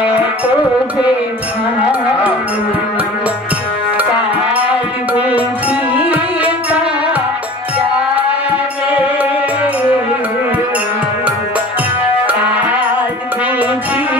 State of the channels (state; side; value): normal; both; correlation 0.41